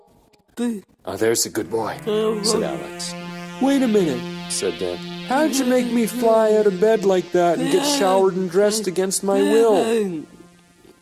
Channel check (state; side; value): identical; both; correlation 1.00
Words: Oh, there's a good boy, said Alex. Wait a minute, said Dan. How'd you make me fly out of bed like that and get showered and dressed against my will?